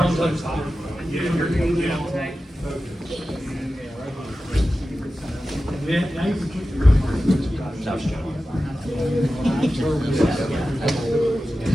to the top. Now you can keep your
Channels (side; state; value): both; normal; correlation 0.94